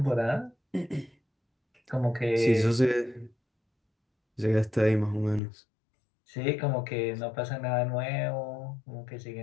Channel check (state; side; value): drops out; right; at 5.4 s